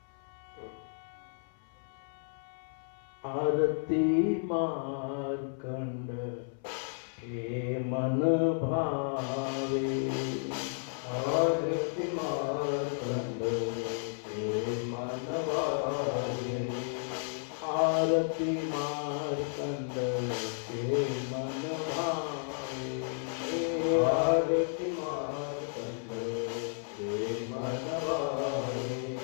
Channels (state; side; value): silent; right; 56 dB below the other